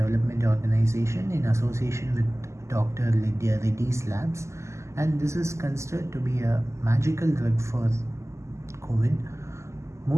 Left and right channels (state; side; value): late; left; 0.13 ms